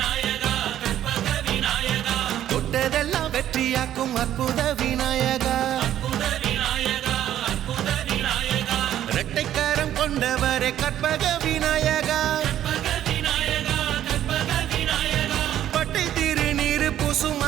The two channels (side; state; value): left; quieter; 11.6 dB